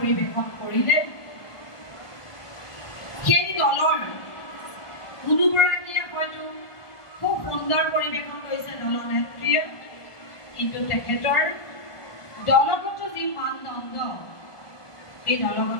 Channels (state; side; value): late; right; 1.4 ms